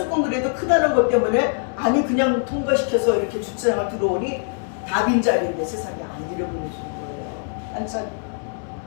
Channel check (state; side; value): silent; right; 64 dB below the other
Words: 그래도 크다는 것 때문에 아니 그냥 통과시켜서 이렇게 주차장을 들어오니 다 빈자리인데 세상에 안 들여보내주는 거예요. 한참.